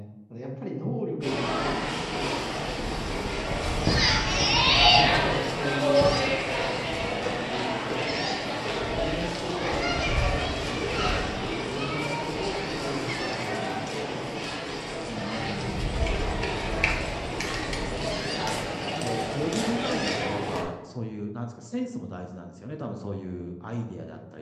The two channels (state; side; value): identical; both; correlation 1.00